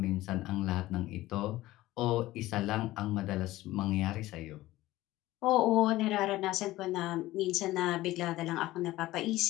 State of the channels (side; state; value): right; quieter; 16.9 dB